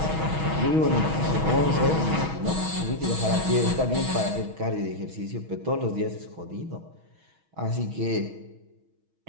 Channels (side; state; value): left; late; 6.3 ms